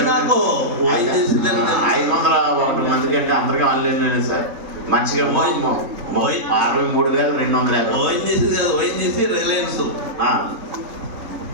501 మంది కంటే అందరికీ ఆన్లైన్ సార్. మంచిగా 63,250. ఓఎన్జీసీ కాదు, ఓఎన్జీసీ రిలయన్స్.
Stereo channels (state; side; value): late; left; 3.6 ms